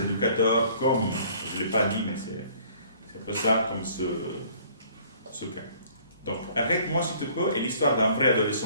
éducateurs, comme, je ne l'ai pas dit, mais c'est un peu ça, comme ce cas. Donc, Arrête-moi si tu peux est l'histoire d'un vrai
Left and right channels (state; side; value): inverted; both; correlation -0.56